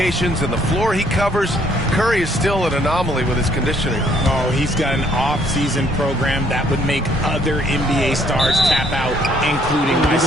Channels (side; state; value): both; normal; correlation 0.65